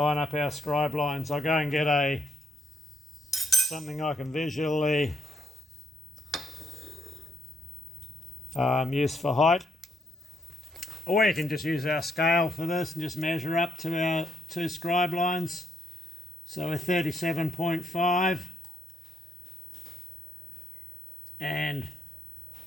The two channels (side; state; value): both; normal; correlation 0.77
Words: up our scribe lines. I'll go and get something I can visually use for height. Or you can just use our scale for this and just measure up to our 2 scribe lines. So we're 37.5 and